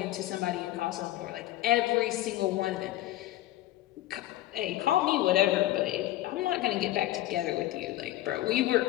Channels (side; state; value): right; quieter; 15.0 dB